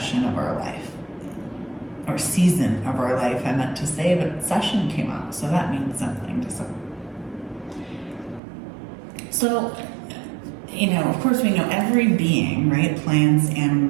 of our life. Or season of our life, I meant to say, but session came out, so that means something to some. So, of course we know every being, right, plants,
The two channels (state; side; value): drops out; left; at 8.4 s